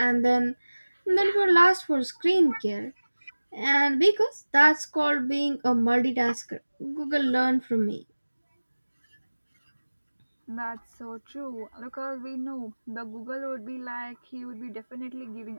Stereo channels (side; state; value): both; inverted; correlation -1.00